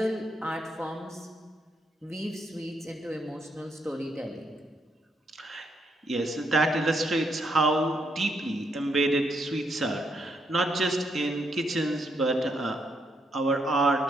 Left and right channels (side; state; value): both; normal; correlation 0.76